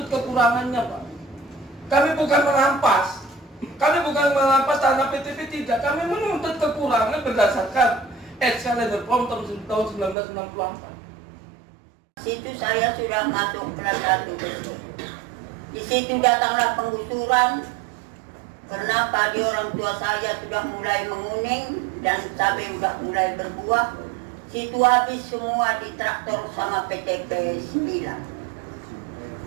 kekurangannya Pak. Kami bukan merampas. Kami bukan merampas tanah PTP, tidak. Kami menuntut kekurangan berdasarkan Excellencer Form tahun 1964. Situ saya sudah masuk kelas 1. Di situ datanglah penggusuran. Karena padi orang tua saya sudah mulai menguning dan cabai sudah mulai berbuah. Situ habis semua di traktor sama PTP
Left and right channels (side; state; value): left; drops out; at 10.2 s